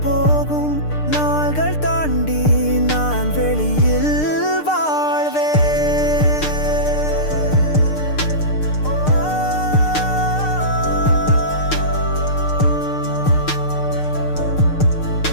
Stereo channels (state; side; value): late; right; 6.6 ms